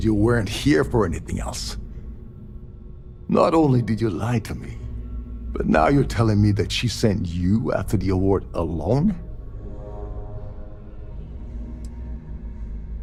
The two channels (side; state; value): both; identical; correlation 1.00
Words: you weren't here for anything else. Not only did you lie to me, but now you're telling me that she sent you after the award alone?